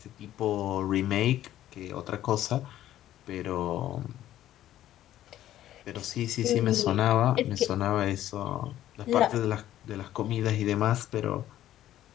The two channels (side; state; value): right; quieter; 12.9 dB